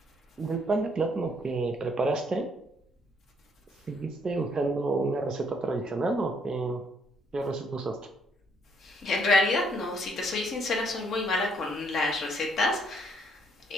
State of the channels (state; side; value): normal; both; correlation 0.69